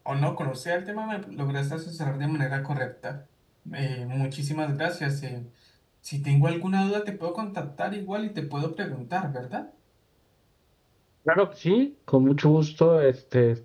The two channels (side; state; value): both; identical; correlation 1.00